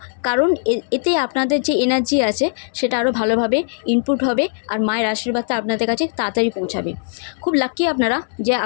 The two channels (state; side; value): silent; right; 66 dB below the other